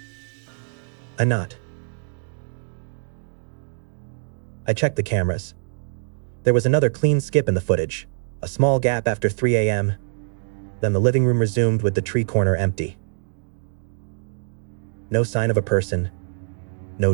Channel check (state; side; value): silent; left; digital silence